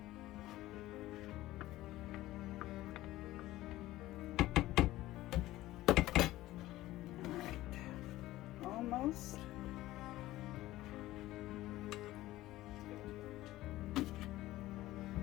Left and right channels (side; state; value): right; quieter; 16.3 dB